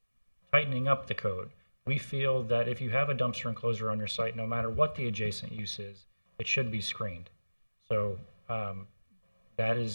tightening up the code. We feel that if you have a dumpster enclosure on your site, no matter what the adjacent use is, it should be screened. So that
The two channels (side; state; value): both; inverted; correlation -1.00